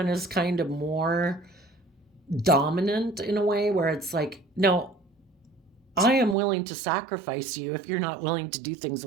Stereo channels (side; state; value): left; drops out; at 6.4 s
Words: is kind of more dominant in a way where it's like, no, I am willing to sacrifice you if you're not willing to do things